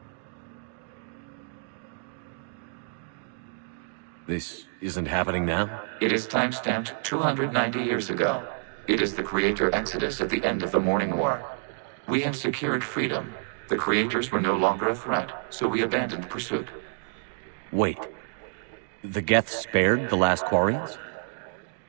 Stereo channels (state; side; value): silent; left; digital silence